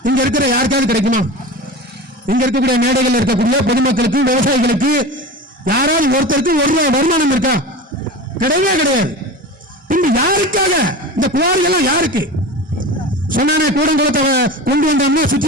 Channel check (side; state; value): both; normal; correlation 0.31